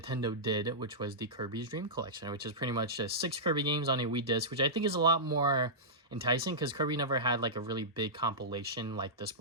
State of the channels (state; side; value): normal; both; correlation -0.15